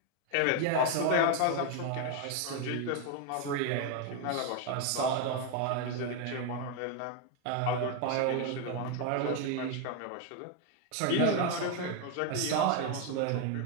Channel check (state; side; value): different; both; correlation 0.01